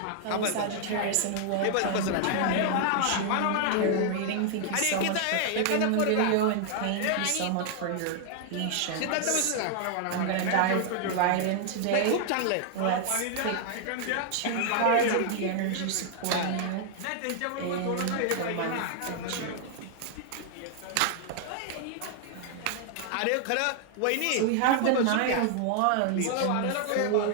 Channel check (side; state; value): both; different; correlation 0.00